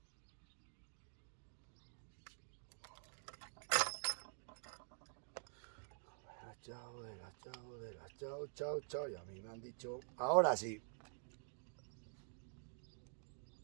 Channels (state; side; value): silent; left; digital silence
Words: Chao. Y a mí me han dicho, ahora sí.